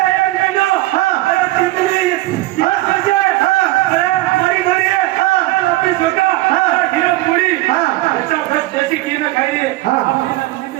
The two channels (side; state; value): left; quieter; 18.2 dB